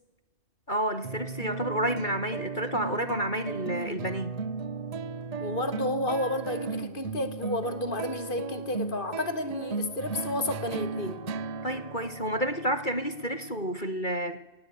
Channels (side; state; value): right; late; 2.5 ms